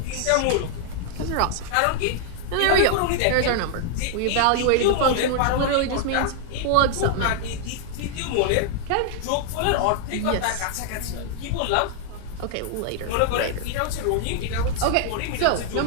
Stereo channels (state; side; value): different; both; correlation 0.00